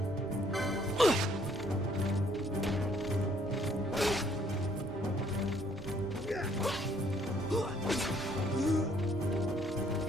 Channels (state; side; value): normal; both; correlation 0.65